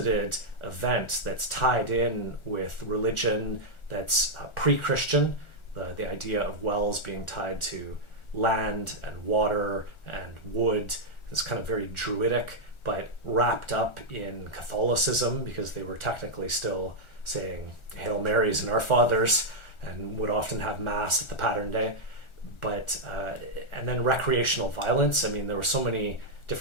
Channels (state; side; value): late; right; 1.4 ms